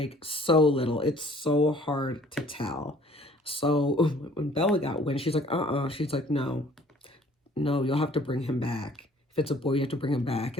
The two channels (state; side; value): normal; both; correlation 0.55